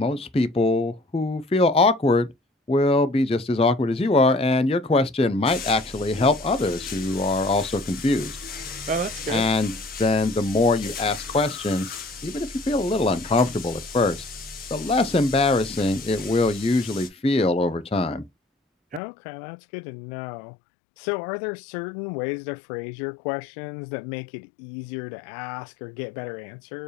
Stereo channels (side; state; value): right; drops out; at 19.0 s